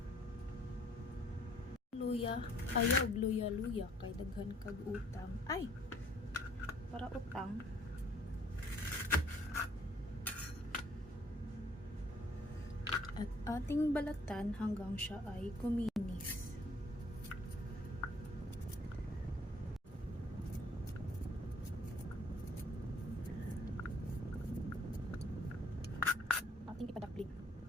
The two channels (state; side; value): normal; both; correlation 0.59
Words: luya, ayaw luya-luya kay daghan kag utang. Ay, para utang. At ating balatan hanggang siya ay kuminis. Ating ipadakling.